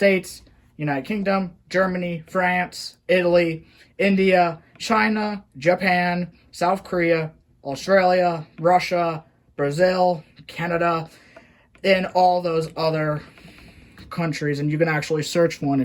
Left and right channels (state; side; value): identical; both; correlation 1.00